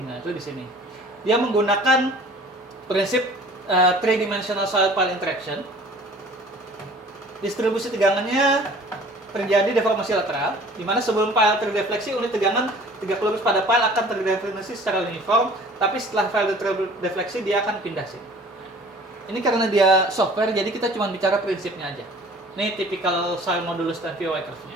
Nah, itu di sini. Dia menggunakan prinsip 3-dimensional soil pile interaction. Distribusi tegangannya terjadi deformasi lateral, di mana sebelum pile terdefleksi, unit tegangan tegak lurus pada pile akan terdeformasi secara uniform, tapi setelah pile terdefleksi dia akan pindah sini. Ini karena dia software, jadi kita cuma bicara prinsipnya aja. Ini tipikal soil modulus dan PY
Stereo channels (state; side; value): normal; both; correlation 0.48